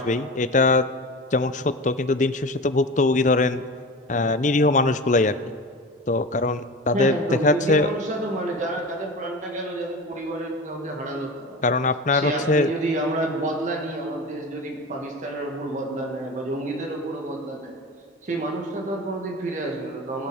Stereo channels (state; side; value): normal; both; correlation 0.30